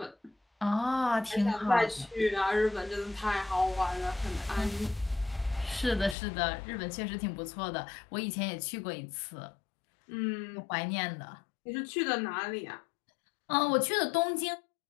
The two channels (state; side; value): drops out; right; at 6.2 s